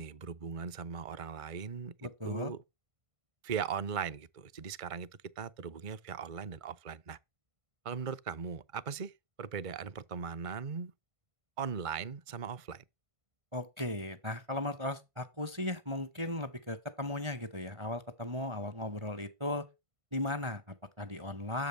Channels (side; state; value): left; late; 1.5 ms